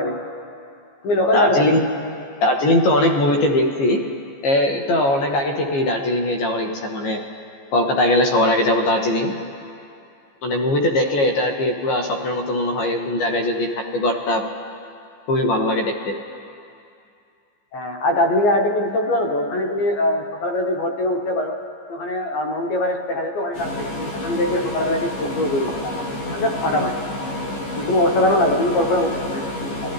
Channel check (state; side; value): late; right; 15 ms